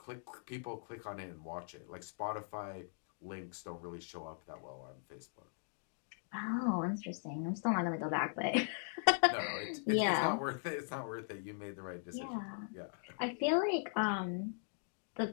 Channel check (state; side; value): silent; right; digital silence